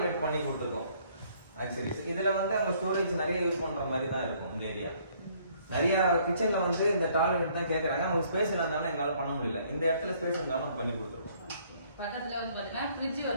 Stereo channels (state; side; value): inverted; both; correlation -0.63